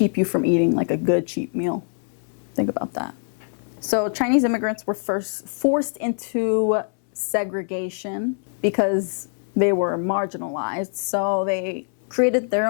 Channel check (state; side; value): silent; right; 57 dB below the other